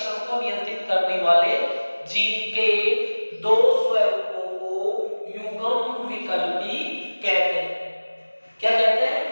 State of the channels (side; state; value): both; inverted; correlation -1.00